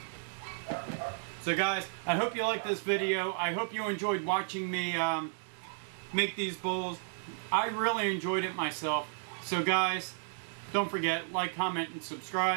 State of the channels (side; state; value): left; silent; digital silence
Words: So guys, I hope you liked this video. I hope you enjoyed watching me make these bowls. I really enjoyed it myself. So guys, don't forget, like, comment, and